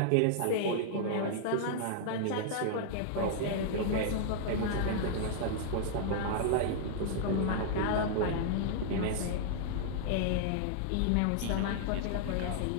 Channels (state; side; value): different; both; correlation -0.01